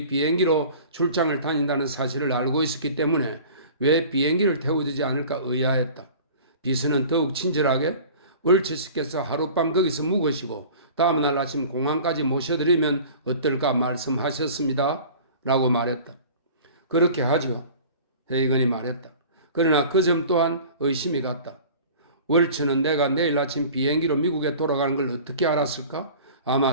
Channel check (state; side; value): inverted; both; correlation -0.43